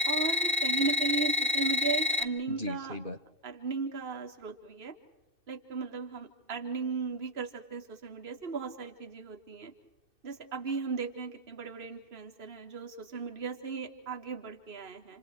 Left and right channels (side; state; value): left; late; 2.6 ms